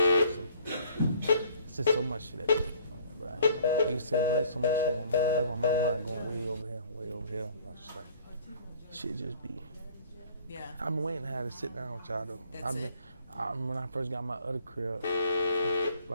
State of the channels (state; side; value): inverted; both; correlation -0.56